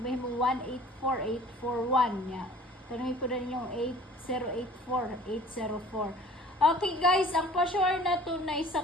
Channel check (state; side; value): normal; both; correlation 0.49